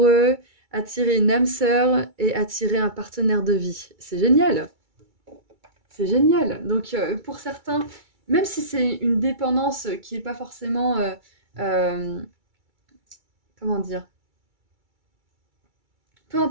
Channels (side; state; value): left; late; 2.3 ms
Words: attirer une âme sœur et attirer un partenaire de vie, c'est génial. C'est génial. Donc pour certains, même si c'est une dépendance qui n'est pas forcément, comment dire, peu